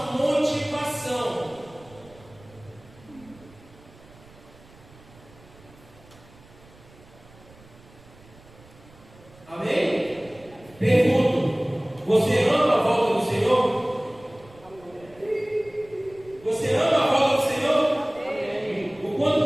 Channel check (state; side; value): noise; right; rumble, 24 dB below the sound